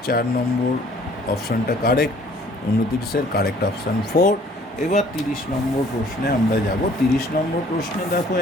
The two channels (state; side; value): normal; both; correlation 0.56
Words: 4 নম্বর অপশানটা কারেক্ট, 29-এর কারেক্ট অপশান 4। এবার 30 নম্বর প্রশ্নে আমরা যাব। 30 নম্বর প্রশ্নে দেখো